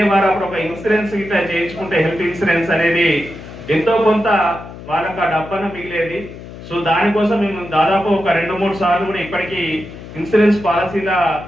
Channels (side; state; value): left; noise; hum, 14 dB below the sound